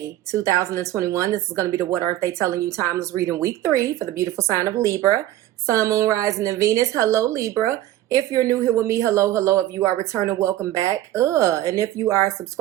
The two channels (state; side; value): quieter; left; 14.2 dB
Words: 2021. This is going to be the What Aren't They Telling You Timeless reading week 3 for the beautiful sign of Libra. Sun, Moon, Rising, and Venus. Hello Libra. If you're new here with me, hello, hello. If you are returning, welcome back. And if you are